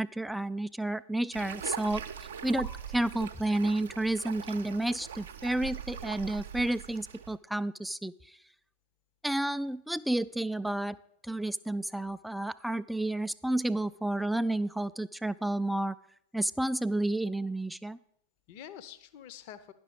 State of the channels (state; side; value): normal; both; correlation 0.93